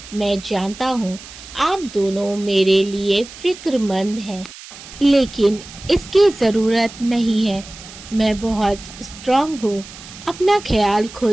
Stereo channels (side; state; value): right; noise; hiss, 16 dB below the sound